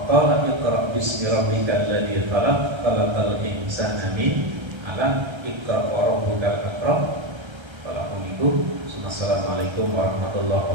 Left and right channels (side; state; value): left; late; 1.3 ms